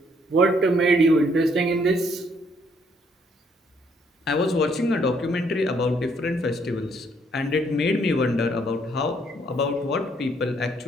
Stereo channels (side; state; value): both; normal; correlation 0.68